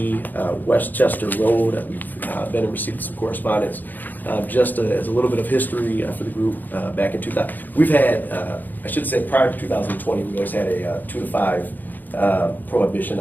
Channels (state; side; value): late; right; 0.086 ms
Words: Westchester Road. We've been in receipt of some correspondence. Just as a little bit of history for the group, back in 2000, we've had, I should say prior to 2020, we always had a 2 to 5 prohibition